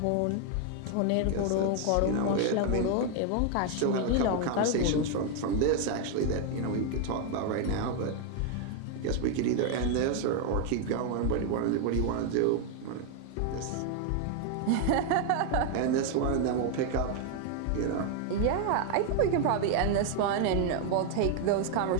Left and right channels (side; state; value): both; different; correlation 0.00